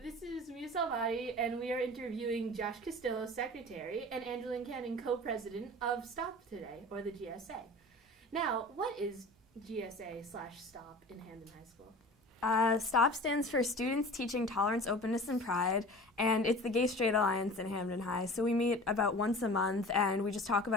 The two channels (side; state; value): both; normal; correlation 0.39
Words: is Mia Salvati, and we are interviewing Josh Castillo, secretary, and Angeline Cannon, co-president of STOP today, or the GSA. Now, what is GSA/STOP in Hamden High School? STOP stands for Students Teaching Tolerance, Openness, and Pride, and it's the Gay Straight Alliance in Hamden High. So we meet about once a month, and we just talk